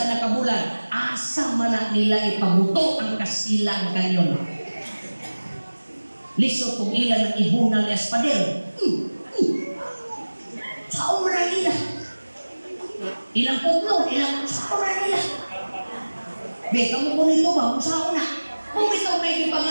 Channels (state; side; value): inverted; both; correlation -1.00